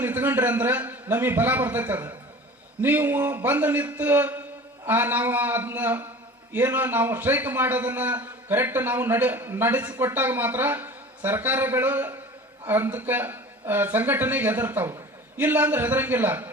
ನಿಂತ್ಕೊಂಡ್ರಿ ಅಂದ್ರೆ ನಮಗೆ ಬಲ ಬರ್ತೈತೆ. ಅದು ನೀವು ಬಂದು ನಿಂತು ನಾವು ಅದನ್ನ ಏನೋ ನಾವು ಸ್ಟ್ರೈಕ್ ಮಾಡೋದನ್ನ ಕರೆಕ್ಟ್ ನಾವು ನಡೆಸಿಕೊಟ್ಟಾಗ ಮಾತ್ರ ಸರ್ಕಾರಗಳು ಅದಕ್ಕೆ ಸಂಘಟನೆಗೆ ಹೆದರ್ತಾವೆ. ಇಲ್ಲ ಅಂದ್ರೆ ಹೆದರಂಗಿಲ್ಲ.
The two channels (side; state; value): both; normal; correlation 0.39